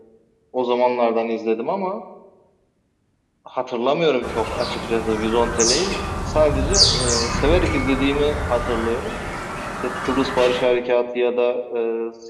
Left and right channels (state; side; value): identical; both; correlation 1.00